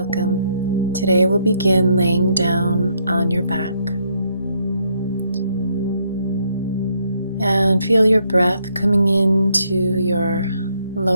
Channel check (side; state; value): both; inverted; correlation -0.73